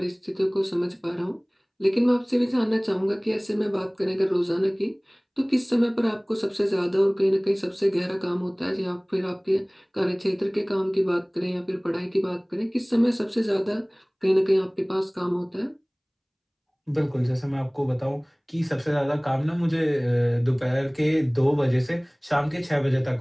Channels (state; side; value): identical; both; correlation 1.00